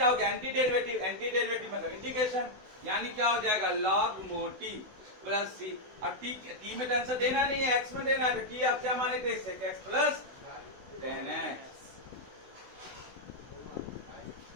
हो गया, एंटी डेरिवेटिव। एंटी डेरिवेटिव मतलब इंटीग्रेशन, यानी क्या हो जाएगा, लॉग मोटी प्लस सी। अब टी में तो आंसर देना नहीं है, एक्स में देना है, तो टी आप क्या माने थे, sec x प्लस 10x।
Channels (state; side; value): late; left; 16 ms